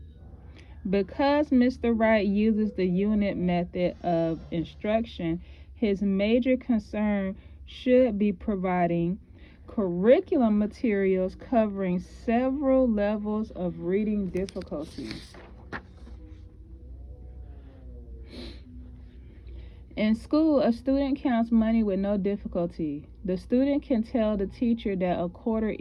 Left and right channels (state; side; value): identical; both; correlation 1.00